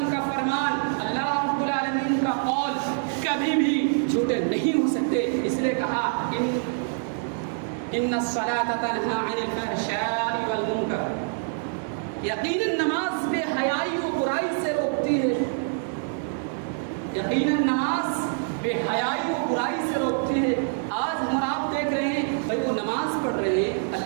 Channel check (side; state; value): left; silent; digital silence